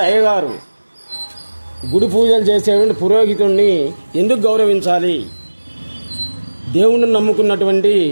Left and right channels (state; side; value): inverted; both; correlation -1.00